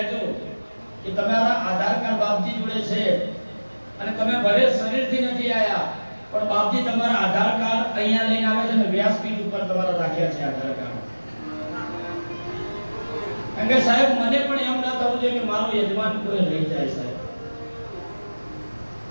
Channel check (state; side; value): inverted; both; correlation -1.00